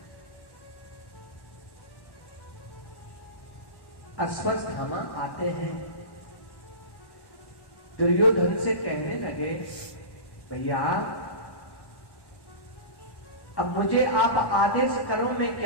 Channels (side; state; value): right; late; 1.1 ms